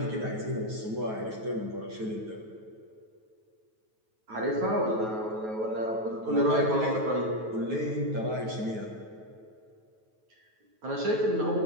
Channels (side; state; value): left; late; 9.2 ms